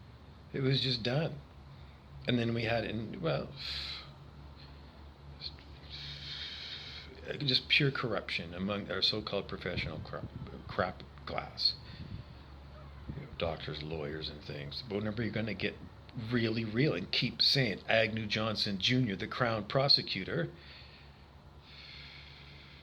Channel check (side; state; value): both; identical; correlation 1.00